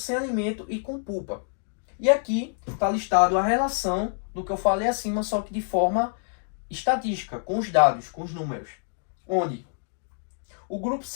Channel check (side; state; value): right; silent; digital silence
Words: alimento e com pulpa. E aqui está listado a relação do que eu falei acima, só que de forma estatística, com os dados, com os números. Onde o grupo